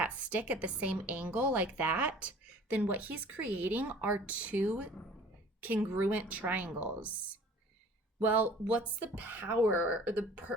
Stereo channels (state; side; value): normal; both; correlation 0.48